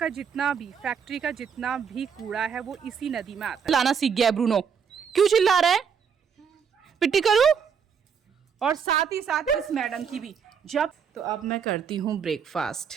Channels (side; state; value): left; quieter; 6.9 dB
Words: जितना भी फैक्ट्री का जितना भी कूड़ा है वो इसी नदी में आता है। लाना सीख गया ब्रूनो, क्यों चिल्ला रहा है? पिट्टी करूं? और साथ ही साथ इस मैडम की भी जब। तो अब मैं करती हूँ